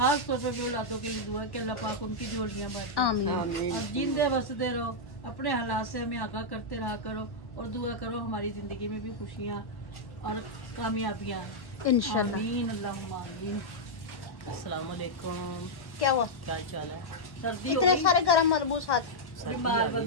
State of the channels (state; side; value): late; right; 1.1 ms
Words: तौर पे औलादों के लिए दुआ है कि अल्लाह पाक उनकी झोलियां भरे। आमीन। और जिंदे बसते रहो, अपने हालात से हमें आगाह करते रहा करो और दुआ करो हमारी जिंदगी में भी खुशियाँ और कामयाबियाँ इंशाल्लाह। आमीन अल्लाहुम्मा आमीन। अस्सलाम वालेकुम, क्या हुआ? क्या चाल है? सर्दी इतने सारे गरम मलबूस हाथ। बीमार